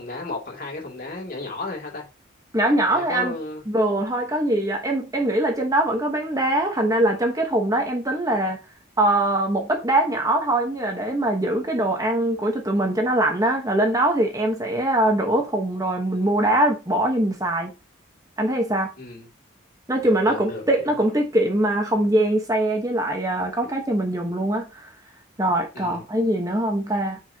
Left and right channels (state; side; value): normal; both; correlation 0.49